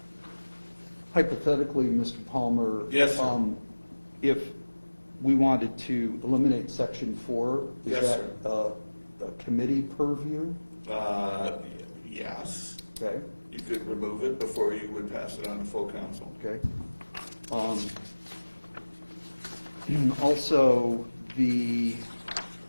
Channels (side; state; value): both; inverted; correlation -1.00